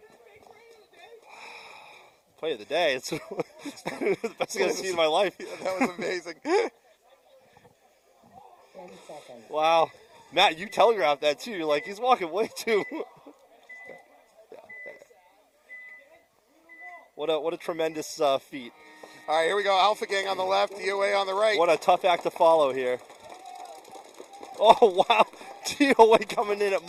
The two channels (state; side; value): identical; both; correlation 1.00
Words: Play of the day. It's the best thing I've seen in my life. That was amazing. 10 seconds. Wow. Matt, you telegraphed that too. You're like, he's walking way too. What a tremendous feat. All right, here we go. Alpha Gang on the left, D.O.A on the right. What a tough act to follow here. Oh, wow. D.O.A coming in at